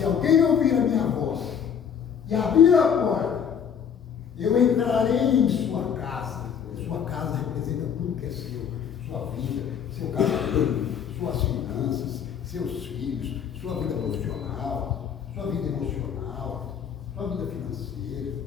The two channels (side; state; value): right; quieter; 7.7 dB